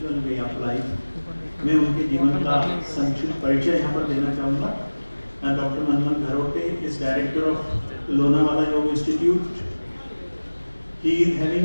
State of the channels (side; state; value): both; inverted; correlation -1.00